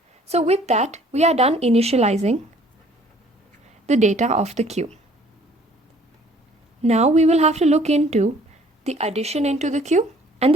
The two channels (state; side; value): normal; both; correlation 0.56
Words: So with that, we are done initializing the data of the queue. Now we will have to look into the addition into the queue and